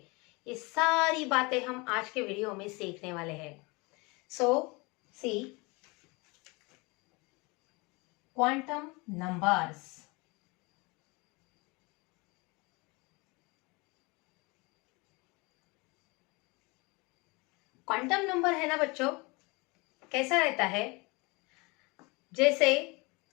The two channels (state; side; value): quieter; right; 26.6 dB